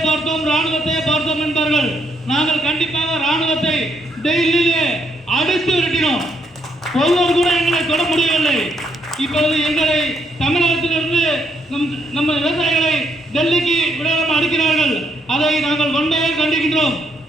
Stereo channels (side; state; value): both; normal; correlation 0.75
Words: பார்த்தோம் என்பார்கள். நாங்கள் கண்டிப்பாக ராணுவத்தை டெல்லியிலே அடித்து விரட்டினோம். ஒருவர் கூட எங்களை தொட முடியவில்லை. இப்பொழுது எங்களை தமிழகத்திலிருந்து நம்ம விவசாயிகளை டெல்லிக்கு விடாமல் அடிக்கிறார்கள். அதை நாங்கள் வன்மையாக கண்டிக்கின்றோம்.